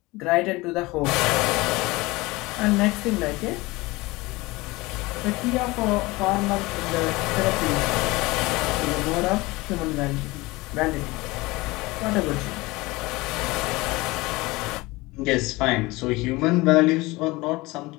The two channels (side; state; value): right; quieter; 21.9 dB